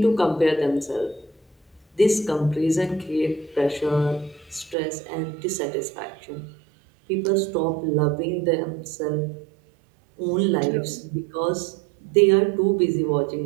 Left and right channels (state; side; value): drops out; left; at 4.8 s